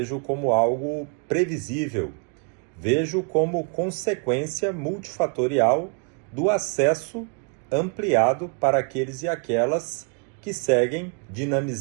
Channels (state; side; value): quieter; left; 37.5 dB